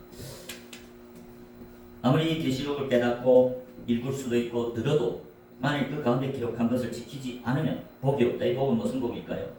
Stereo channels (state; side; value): identical; both; correlation 1.00